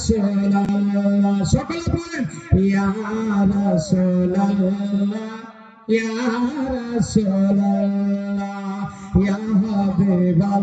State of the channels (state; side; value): identical; both; correlation 1.00